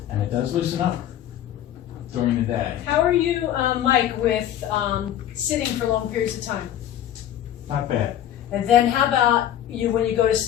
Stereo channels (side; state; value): right; quieter; 11.3 dB